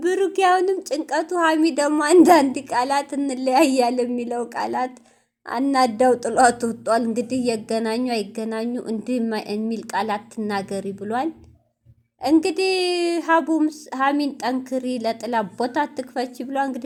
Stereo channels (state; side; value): identical; both; correlation 1.00